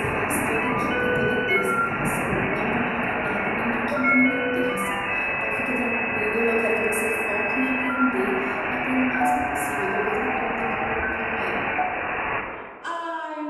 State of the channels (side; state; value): both; identical; correlation 1.00